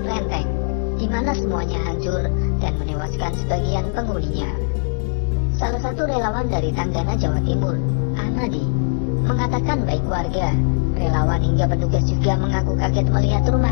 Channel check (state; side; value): silent; right; 62 dB below the other